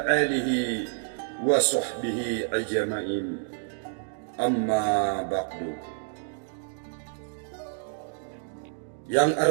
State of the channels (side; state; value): left; silent; digital silence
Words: آله وصحبه أجمعين. أما بعد. Yang